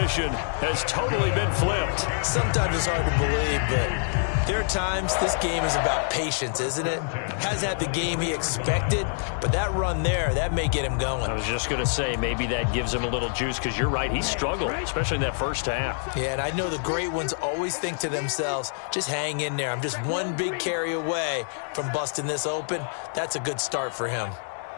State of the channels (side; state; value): right; silent; digital silence